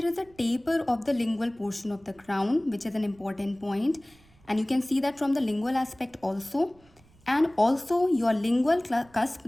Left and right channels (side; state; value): right; noise; rumble, 29 dB below the sound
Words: is a taper of the lingual portion of the crown, which is an important point, and you can see that from the lingual aspect also. And also your lingual cusp,